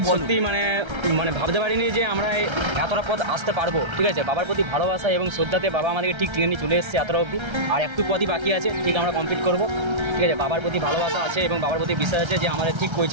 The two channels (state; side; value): late; left; 1.3 ms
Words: বলো। মানে ভাবতে পারিনি যে আমরা এতটা পথ আসতে পারবো। ঠিক আছে, বাবার প্রতি ভালোবাসা এবং শ্রদ্ধাতে বাবা আমাদেরকে ঠিক টেনে নিয়ে চলে এসেছে এতটা অবধি। আর একটু পথই বাকি আছে, ঠিক আমরা কমপ্লিট করবো। ঠিক আছে, বাবার প্রতি ভালোবাসা আছে এবং বাবার প্রতি বিশ্বাস আছে যে আমাদের ঠিক